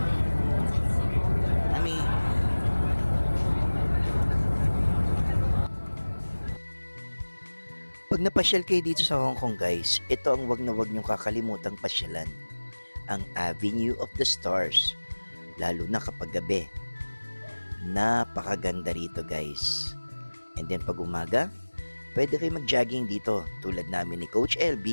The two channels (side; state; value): both; inverted; correlation -1.00